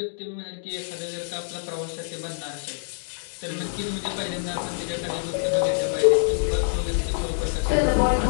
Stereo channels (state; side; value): silent; right; digital silence